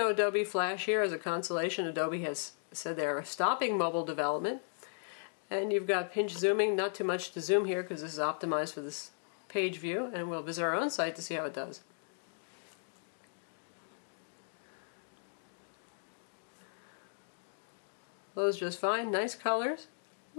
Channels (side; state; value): right; silent; digital silence